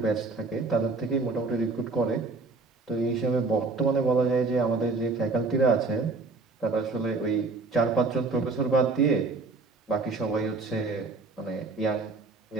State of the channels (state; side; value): quieter; left; 3.9 dB